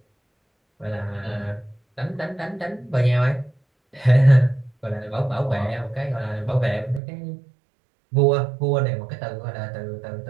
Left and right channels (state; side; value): drops out; left; at 7.0 s